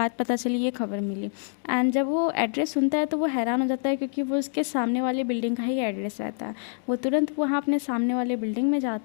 पता चली, ये खबर मिली। एंड जब वो एड्रेस सुनता है तो वो हैरान हो जाता है क्योंकि वो उसके सामने वाले बिल्डिंग का ही एड्रेस रहता है। वो तुरंत वहाँ अपने सामने वाले बिल्डिंग में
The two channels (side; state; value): right; silent; 61 dB below the other